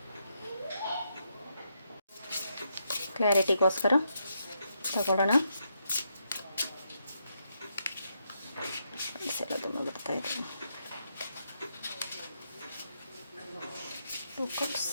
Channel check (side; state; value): both; inverted; correlation -0.80